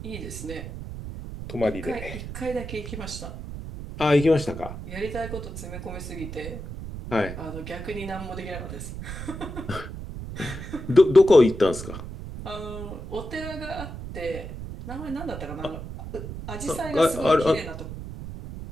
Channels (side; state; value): right; noise; rumble, 9 dB below the sound